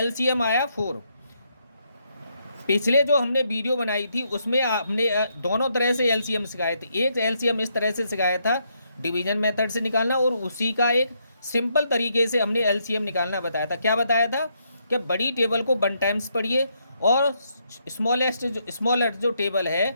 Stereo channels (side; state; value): both; inverted; correlation -0.76